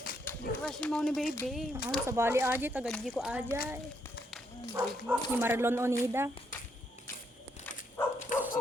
Di crush mo ni baby. sa bali aji, tagadji ko ajay. Ni Marlon Onida.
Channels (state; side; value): normal; both; correlation 0.75